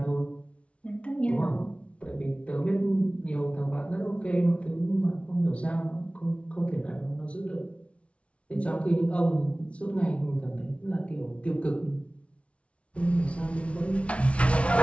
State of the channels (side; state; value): right; late; 0.062 ms